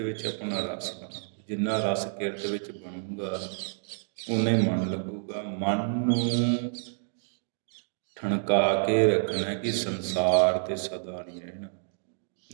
ਵਿੱਚ ਆਪਣਾ ਰਸ ਬਣਾਓ। ਜਿੰਨਾ ਰਸ ਕਿਰਤ ਵਿੱਚ ਬਣੂਗਾ ਉਨਾ ਹੀ ਮਨ ਲੱਗੂਗਾ। ਮਨ ਨੂੰ ਠਣਕਾ ਕੇ ਰੱਖਣਾ ਕਿ ਸੰਸਾਰ ਤੇ ਸਦਾ ਨਹੀਂ ਰਹਿਣਾ,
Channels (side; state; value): left; silent; digital silence